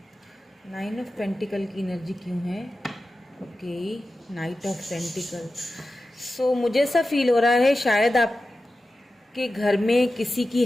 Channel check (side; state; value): both; normal; correlation 0.93